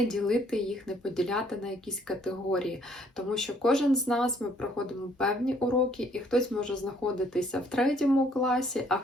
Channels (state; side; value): normal; both; correlation 0.64